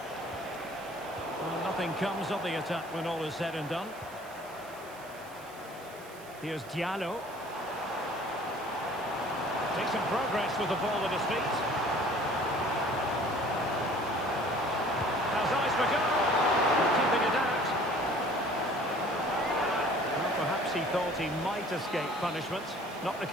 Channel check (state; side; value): noise; right; hiss, 21 dB below the sound